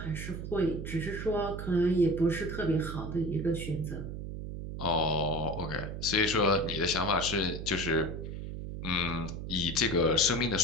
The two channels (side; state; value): right; noise; hum, 7 dB below the sound